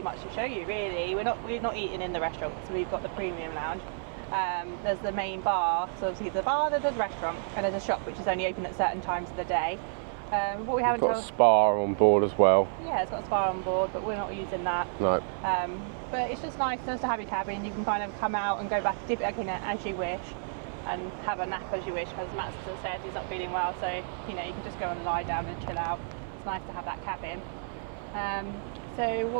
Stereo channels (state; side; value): silent; left; digital silence